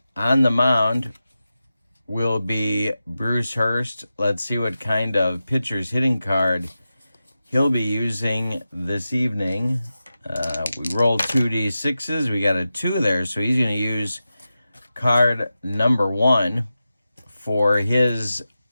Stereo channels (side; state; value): both; inverted; correlation -0.92